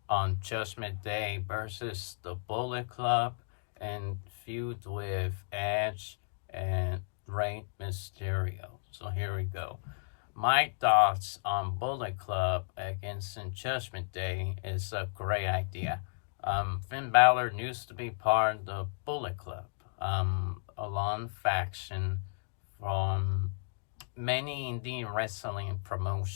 on Judgment Day versus the Bullet Club and feud with Edge and Rey Mysterio. So here we go. My thoughts on Bullet Club against Judgment Day is a great idea. Finn Balor used to be part of the Bullet Club, a long faction from many indie wrestling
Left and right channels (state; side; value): silent; right; digital silence